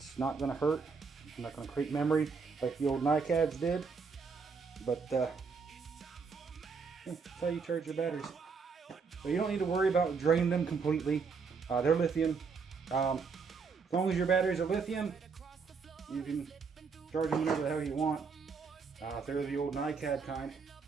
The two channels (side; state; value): left; quieter; 5.2 dB